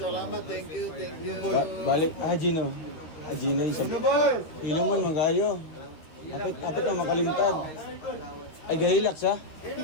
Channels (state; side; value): late; right; 13 ms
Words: Thank you. Thank you. Balik. Gino. Gino. Ano boy? Hilong man, magayo. Kapit na makalimtad. Ay, gahilak sa?